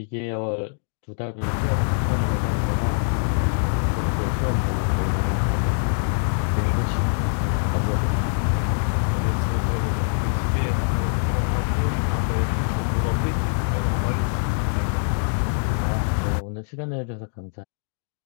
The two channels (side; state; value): right; silent; digital silence